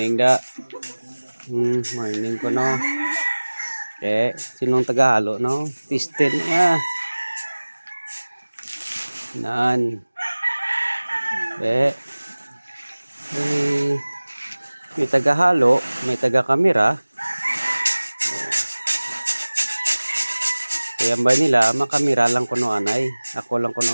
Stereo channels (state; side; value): inverted; both; correlation -1.00